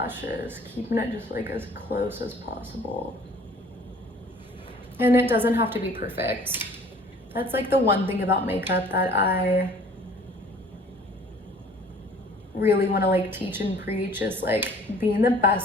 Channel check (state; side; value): normal; both; correlation 0.52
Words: keeping it just like as close as possible. And it doesn't have to be perfect. That's like the one thing about makeup that I really want to like teach and preach, is like being the